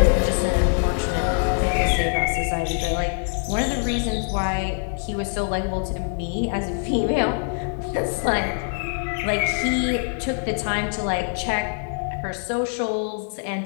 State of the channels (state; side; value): silent; right; 60 dB below the other